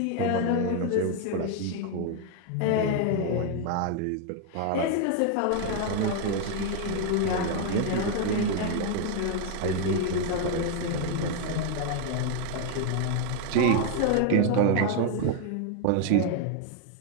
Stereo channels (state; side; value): different; both; correlation 0.00